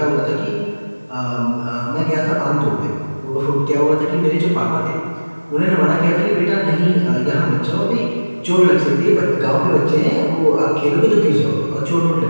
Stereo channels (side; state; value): both; inverted; correlation -1.00